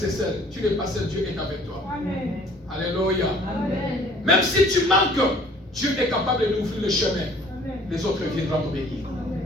seul, tu n'es pas seul, Dieu est avec toi. Amen. Alléluia. Amen. Même si tu manques, Dieu est capable d'ouvrir le chemin. Amen. Les autres viendront t'obéir.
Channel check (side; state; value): both; normal; correlation 0.54